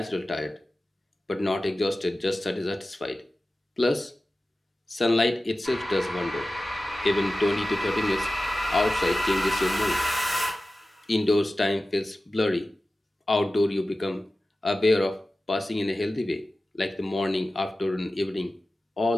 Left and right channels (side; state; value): both; normal; correlation 0.95